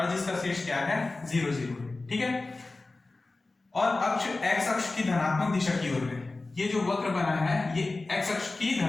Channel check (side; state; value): right; quieter; 3.3 dB